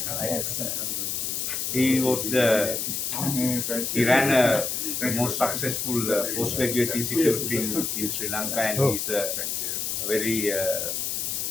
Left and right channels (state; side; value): noise; left; hiss, 1 dB below the sound